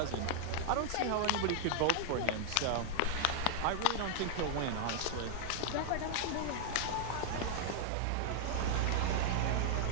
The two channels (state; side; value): different; both; correlation -0.01